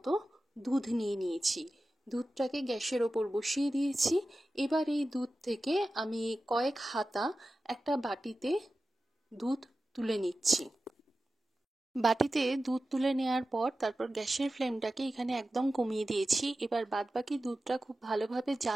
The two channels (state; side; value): normal; both; correlation 0.94